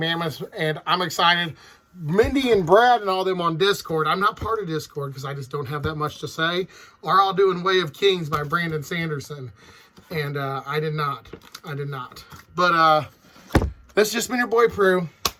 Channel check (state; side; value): identical; both; correlation 1.00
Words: and I'm excited. Mindy and Brad and all them on Discord. I'm not part of Discord because I just don't have that much to say. Are all doing Way of Kings by Brandon Sanderson. And I did not. But this has just been your boy Prue.